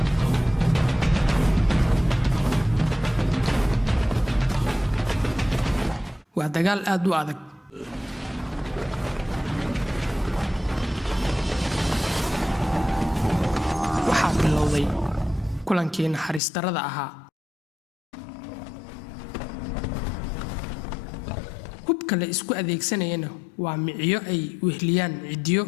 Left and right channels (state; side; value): drops out; right; at 16.4 s